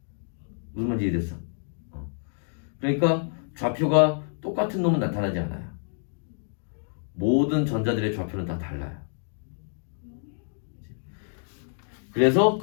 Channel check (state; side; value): silent; right; digital silence